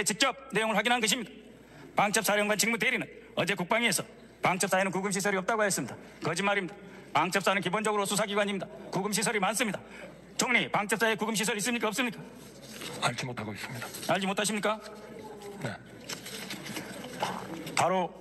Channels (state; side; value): identical; both; correlation 1.00